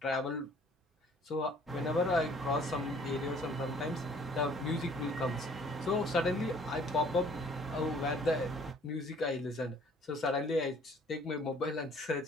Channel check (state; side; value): normal; both; correlation 0.56